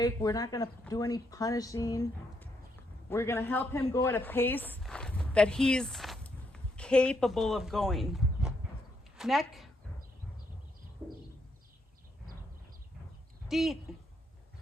We're not going to do any punishing. We're going to help him go at a pace that he's capable of going. Neck. Deep.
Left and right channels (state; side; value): normal; both; correlation 0.76